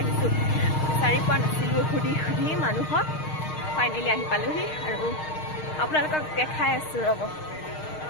বিচাৰি পোৱা নাছিলো খুদি মানুহক ফাইনালি আহি পালোহি আৰু আপোনালোকক দেখাই আছো ৰব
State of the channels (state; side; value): late; right; 6.5 ms